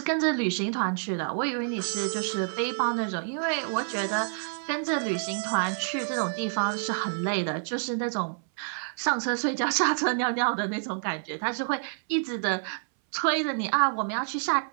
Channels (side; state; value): left; silent; 59 dB below the other